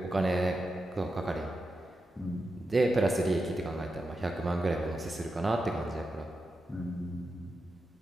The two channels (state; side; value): normal; both; correlation 0.89